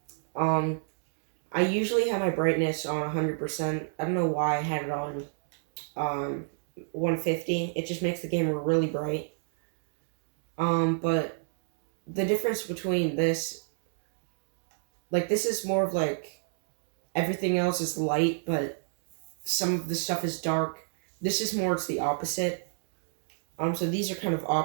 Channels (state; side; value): silent; left; digital silence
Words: Um, I usually have my brightness on 100%. I don't know why I had it on 150. It just makes the game really bright. But the difference between this, like, this is more of like everything else is light, but some of the stuff is dark. This is more, it's the opposite. So these are kind of